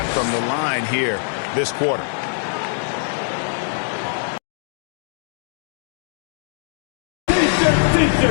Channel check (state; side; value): silent; right; digital silence